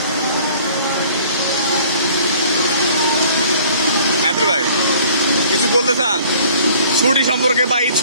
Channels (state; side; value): inverted; both; correlation -0.53